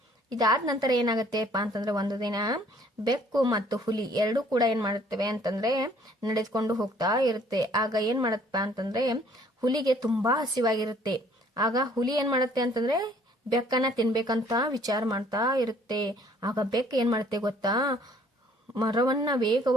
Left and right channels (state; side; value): normal; both; correlation 0.58